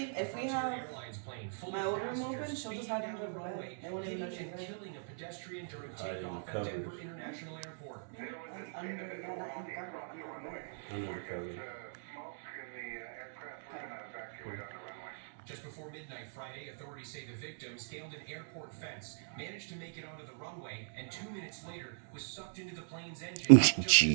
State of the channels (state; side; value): silent; left; digital silence